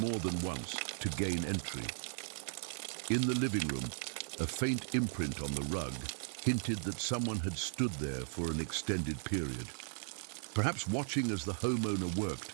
than once to gain entry. In the living room, a faint imprint on the rug hinted that someone had stood there for an extended period, perhaps watching as the homeowner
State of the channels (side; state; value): left; silent; digital silence